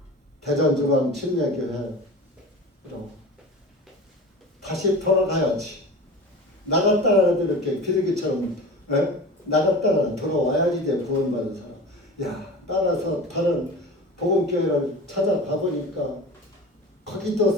대전중앙침례교회로 다시 돌아가야지. 나갔다가라도 이렇게 비둘기처럼 나갔다가 돌아와야지 돼. 구원받은 사람. 야 따라서 다른 복음교회를 찾아가 보니까 거기도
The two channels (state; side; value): normal; both; correlation 0.34